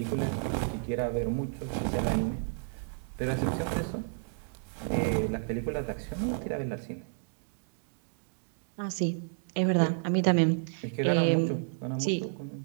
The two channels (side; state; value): left; silent; digital silence